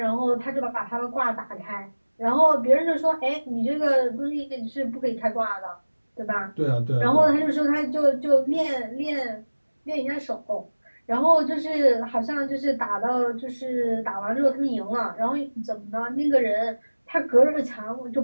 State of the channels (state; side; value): inverted; both; correlation -1.00